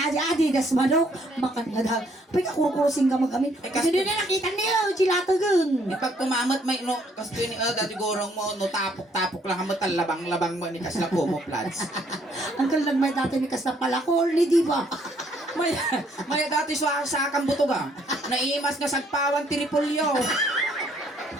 Adidas manok. Makan nga daw. Pag kukurusing ka magamin. Kasi din na nakita niyo. Chilata gun. Pag kumamot may no kasto ni dati gorong mo no tapok-tapok lang mo labang-labang mo ni kasla ko mo plants. Uncle nagmay dati ni Kas na palakol ni di ba? May dati sa kambutoga. Naimas nga sagpawan ti Repolyo.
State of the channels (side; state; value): both; normal; correlation 0.67